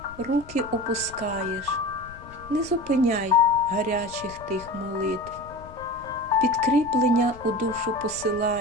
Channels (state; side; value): noise; left; rumble, 18 dB below the sound